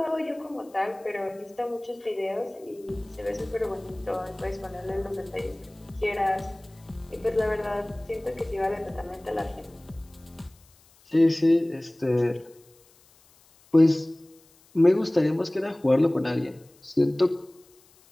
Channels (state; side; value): noise; left; hiss, 29 dB below the sound